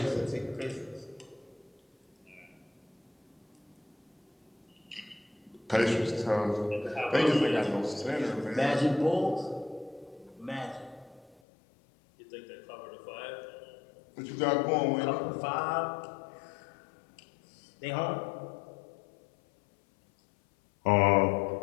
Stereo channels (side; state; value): right; drops out; at 11.4 s